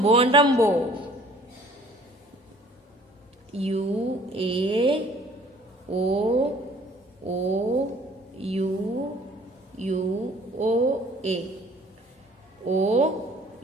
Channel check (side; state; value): both; normal; correlation 0.54